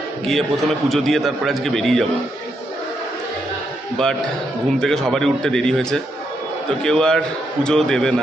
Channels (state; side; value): normal; both; correlation 0.79